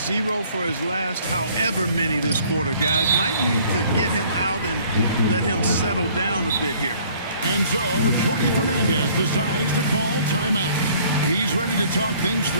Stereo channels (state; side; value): inverted; both; correlation -0.57